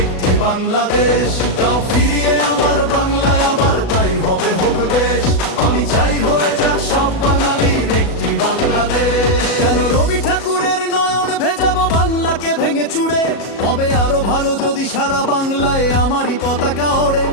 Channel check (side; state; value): right; late; 37 ms